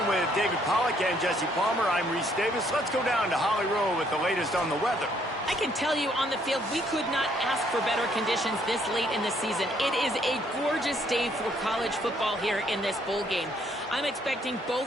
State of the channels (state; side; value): normal; both; correlation 0.67